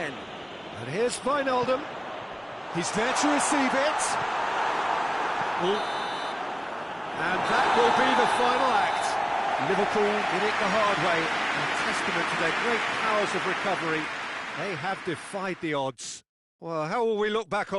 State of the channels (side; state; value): both; identical; correlation 1.00